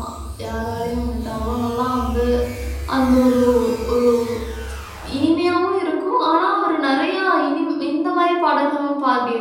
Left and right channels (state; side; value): identical; both; correlation 1.00